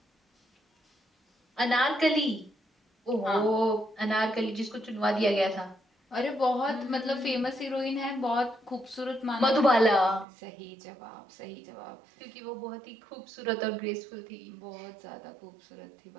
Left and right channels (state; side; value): drops out; left; at 10.2 s